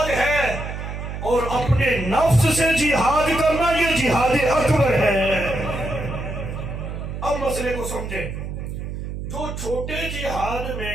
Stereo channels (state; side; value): noise; right; hum, 7 dB below the sound